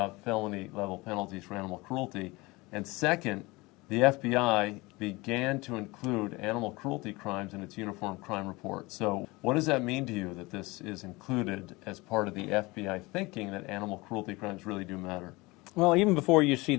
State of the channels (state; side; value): quieter; right; 23.0 dB